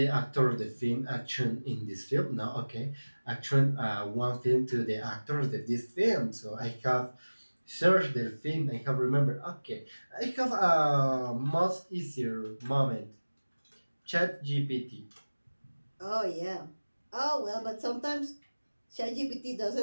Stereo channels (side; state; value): both; inverted; correlation -1.00